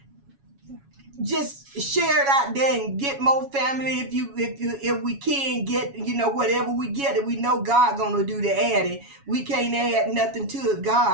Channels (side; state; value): left; late; 7.2 ms